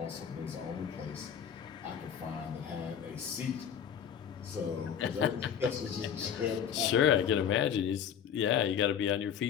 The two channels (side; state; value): right; quieter; 8.4 dB